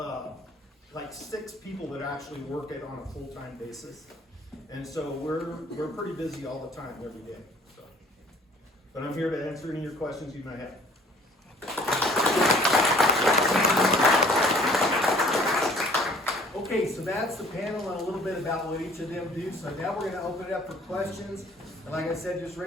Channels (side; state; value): both; normal; correlation 0.54